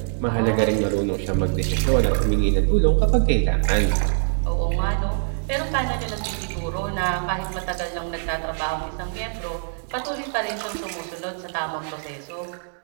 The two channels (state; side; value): silent; left; 63 dB below the other